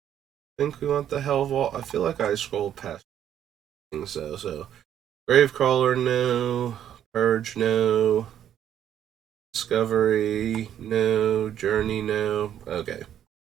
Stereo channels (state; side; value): quieter; left; 10.3 dB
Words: think we want the Hell Vault. I feel like I scrolled past things though. So Gravecrawler, no. Purge, no. Discovery, no. Journey, no. Okay.